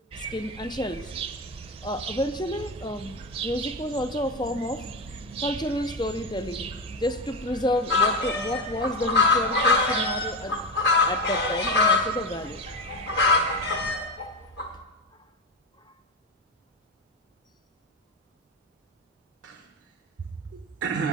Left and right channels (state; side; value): normal; both; correlation 0.17